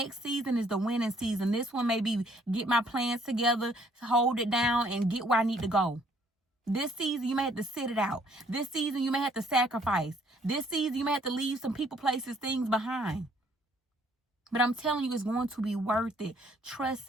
season is the winning season. This one may be get my plans together, hold it down, and get where I need to go. This season, you may have to sit it out. This season, you may have to sacrifice. This season, you may have to leave some people, places, things behind. But I'm telling you, it's going to be worth it. Trust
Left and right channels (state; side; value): normal; both; correlation 0.63